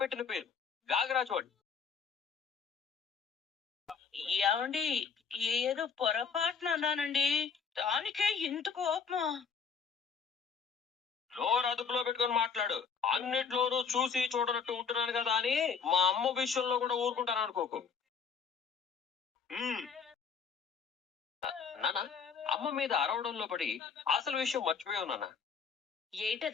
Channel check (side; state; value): right; quieter; 6.0 dB